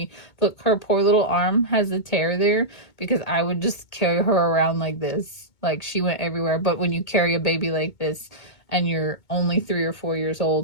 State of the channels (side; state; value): right; late; 2.2 ms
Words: Look, her poor little arm has a tear there because I would just carry her around like this. Like, she went everywhere. But when you carry a baby like this and you're only 3 or 4 years